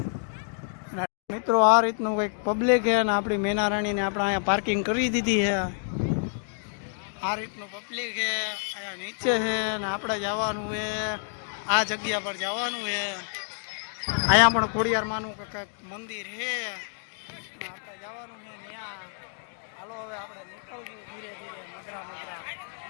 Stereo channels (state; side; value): silent; right; digital silence